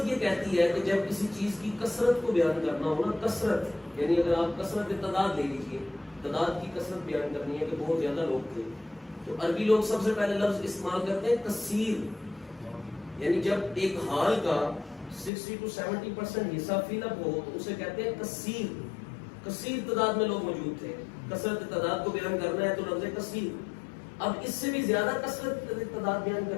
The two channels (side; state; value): right; drops out; at 15.3 s